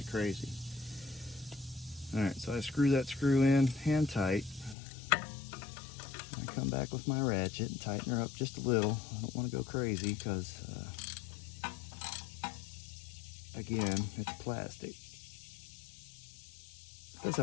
crazy. All right, so I screw that screw in hand tight. I come back with my ratchet and tighten her up just a little. I don't want to go crazy because, again, it's plastic. It does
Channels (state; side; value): drops out; right; at 4.8 s